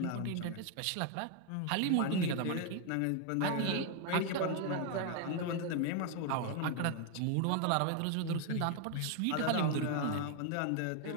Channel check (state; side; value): different; both; correlation 0.01